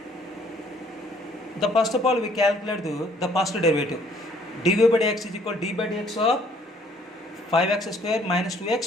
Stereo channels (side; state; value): both; normal; correlation 0.61